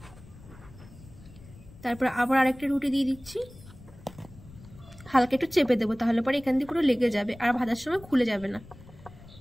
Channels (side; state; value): left; noise; rumble, 20 dB below the sound